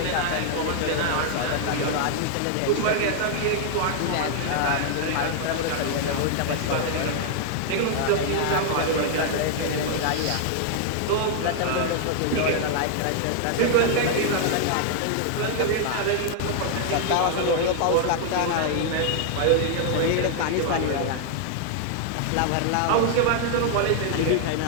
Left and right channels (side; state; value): both; different; correlation 0.00